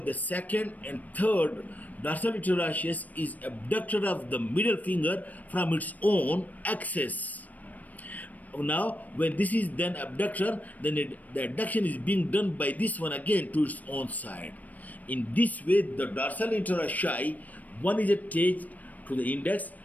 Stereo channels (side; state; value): right; late; 0.076 ms